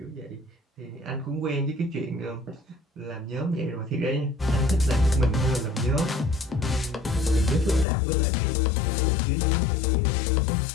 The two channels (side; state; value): right; drops out; at 7.9 s